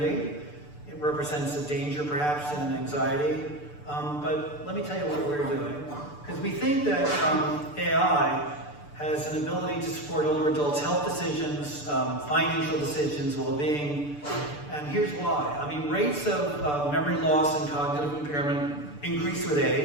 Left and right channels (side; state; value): right; late; 6.8 ms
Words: It represents a danger, perhaps, and an anxiety. But let me tell you what we're doing. Because we think that AI has an ability to support older adults' health decisions, financial decisions, well-being. And here's why. Rates of memory loss and cognitive impairment increase with